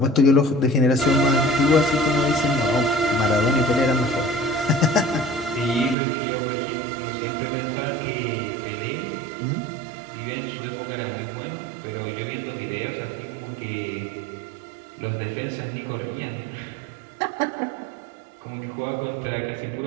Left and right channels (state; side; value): drops out; left; at 6.0 s